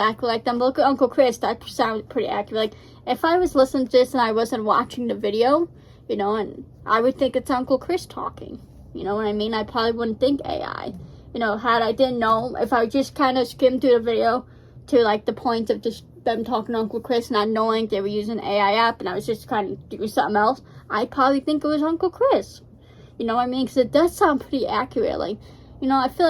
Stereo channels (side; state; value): both; identical; correlation 1.00